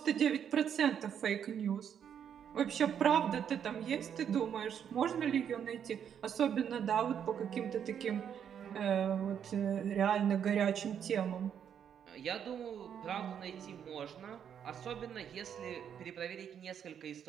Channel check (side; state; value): left; quieter; 8.5 dB